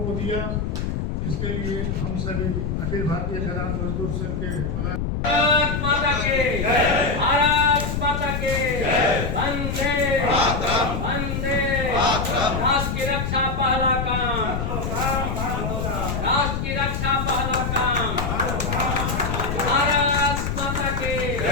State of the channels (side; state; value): left; noise; rumble, 2 dB below the sound